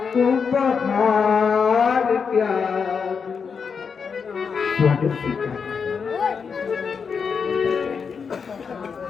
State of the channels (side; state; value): right; quieter; 6.0 dB